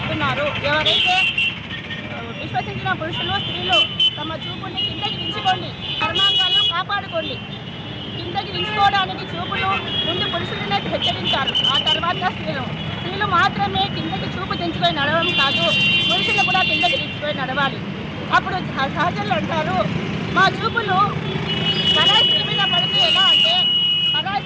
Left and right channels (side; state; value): both; identical; correlation 1.00